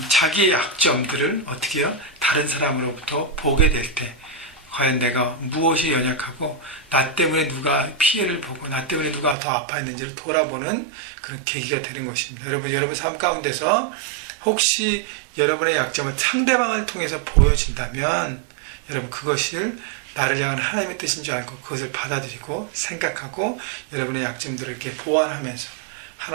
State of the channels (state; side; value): drops out; left; at 9.3 s